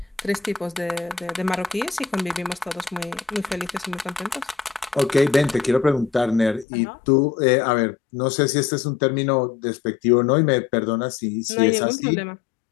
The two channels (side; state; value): right; drops out; at 6.7 s